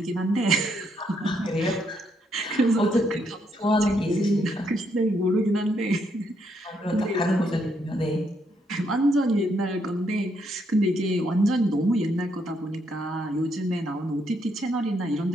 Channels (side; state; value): both; normal; correlation 0.75